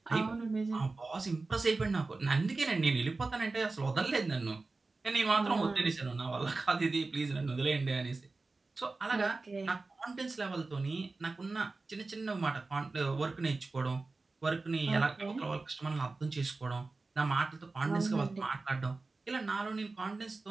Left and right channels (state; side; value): quieter; left; 3.6 dB